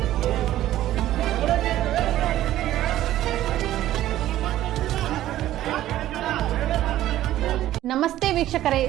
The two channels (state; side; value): quieter; left; 13.7 dB